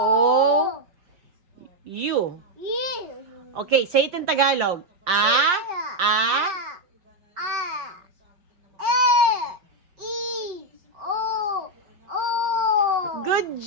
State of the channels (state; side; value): late; left; 5.4 ms